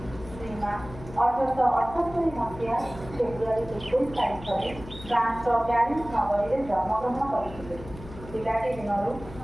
ଶ୍ରୀମା 1878 ମସିହା ଫେବୃଆରୀ 21 ତାରିଖରେ ଫ୍ରାନ୍ସର ପ୍ୟାରିସ୍ ନଗରୀରେ ଜନ୍ମଗ୍ରହଣ କରିଥିଲେ। ପିଲାଟି ଦିନରୁ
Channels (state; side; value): noise; left; hum, 15 dB below the sound